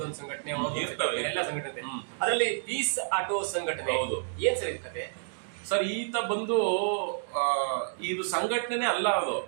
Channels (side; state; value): left; silent; digital silence